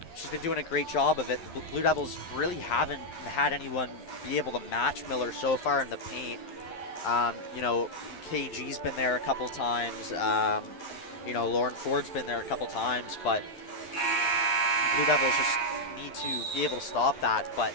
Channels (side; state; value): right; late; 11 ms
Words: She's been doing a great job of it. The Blue Devils really haven't had anyone be able to match Miller so far in the paint. KG's been there a couple times. Lauren Ford's been there a couple times, but Blue Devils just need to be able to stop that. But,